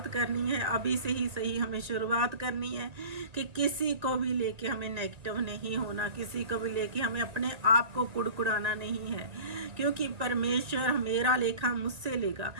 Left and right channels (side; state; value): left; late; 1.9 ms